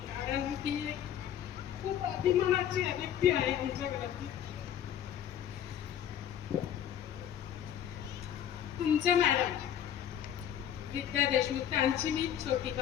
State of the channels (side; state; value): right; quieter; 10.0 dB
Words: कारण ती खूप अभिमानाची व्यक्ती आहे आमच्या घरातली. तुमच्या मॅडम विद्या देशमुख त्यांची मी छोटी